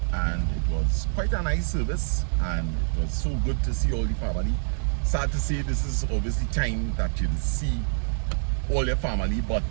and it was quite a nice service and it was so good to see all the family. Sad to say this is obviously time that you'll see all your family, but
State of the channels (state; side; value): silent; left; digital silence